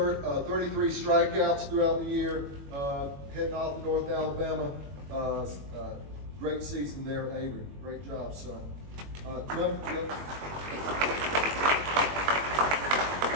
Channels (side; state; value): left; late; 21 ms